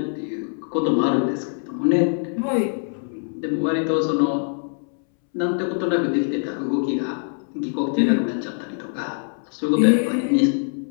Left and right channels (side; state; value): right; silent; 63 dB below the other